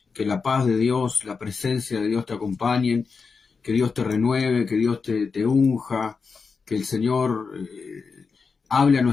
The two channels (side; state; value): right; quieter; 5.0 dB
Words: Que la paz de Dios, la presencia de Dios te acompañen, que Dios te renueve, que Dios te unja, que el Señor hable a